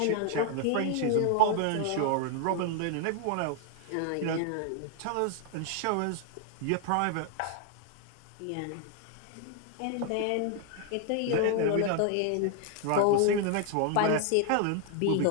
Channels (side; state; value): both; different; correlation 0.00